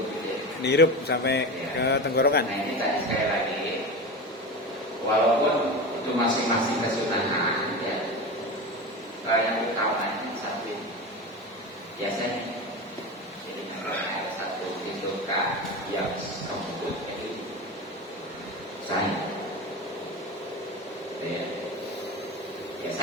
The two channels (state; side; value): normal; both; correlation 0.25